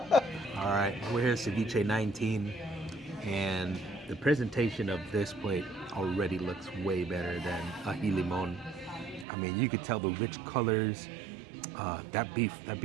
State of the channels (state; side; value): drops out; left; at 9.2 s